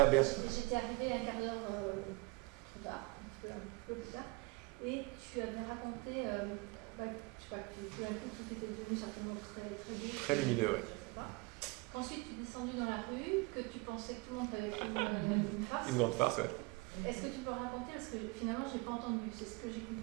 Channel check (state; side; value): quieter; left; 24.3 dB